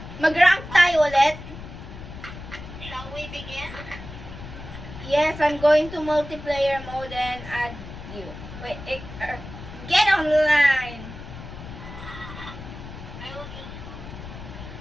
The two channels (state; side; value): noise; left; rumble, 12 dB below the sound